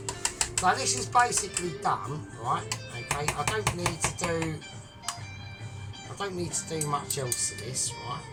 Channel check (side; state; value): both; identical; correlation 1.00